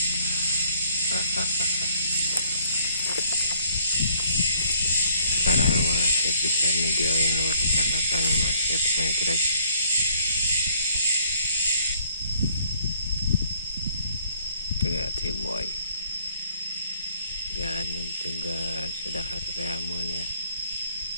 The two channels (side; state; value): both; inverted; correlation -0.61